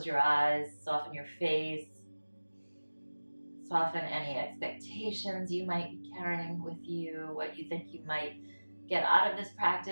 your eyes, soften your face. Soften any expectations you might be carrying with you, what you think you might get out of this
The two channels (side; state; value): both; inverted; correlation -1.00